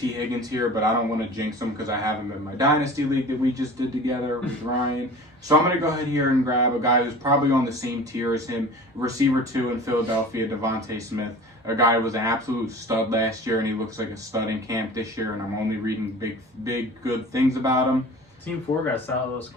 Higgins here, but I don't want to jinx him because I have him in my Dynasty League that we just did together with Ryan. So I'm going to go ahead here and grab a guy who's probably on the same tier as him, receiver 2 in Philadelphia, Devontae Smith. A guy who was an absolute stud last year, and he looks like a stud in camp this year, and I'm only reading big, good things about him. Team 4 got a solid little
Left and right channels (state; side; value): normal; both; correlation 0.40